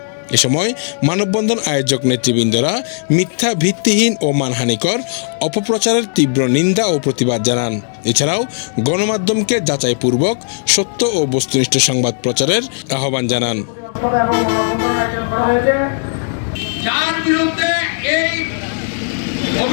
এ সময় মানববন্ধন আয়োজক নেতৃবৃন্দরা মিথ্যা, ভিত্তিহীন ও মানহানিকর অপপ্রচারের তীব্র নিন্দা ও প্রতিবাদ জানান। এছাড়াও গণমাধ্যমকে যাচাইপূর্বক সত্য ও বস্তুনিষ্ঠ সংবাদ প্রচারের আহ্বান জানান। যার বিরুদ্ধে এই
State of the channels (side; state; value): right; silent; 69 dB below the other